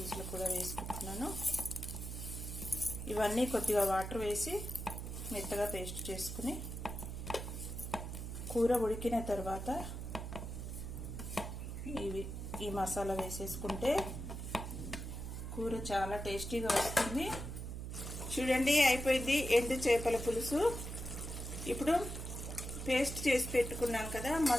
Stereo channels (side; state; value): right; noise; hum, 6 dB below the sound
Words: కూడా వేసుకుంటున్నాను. ఇవన్నీ కొద్దిగా వాటర్ వేసి మెత్తగా పేస్ట్ చేసుకుని కూర ఉడికిన తర్వాత ఈ మసాలా వేసేసుకుంటే కూర చాలా టేస్టీగా వస్తుంది. చూడండి, అయిపోయింది ఎండు చేపల పులుసు. ఇప్పుడు పేస్ట్ చేసి పెట్టుకున్నాను కదా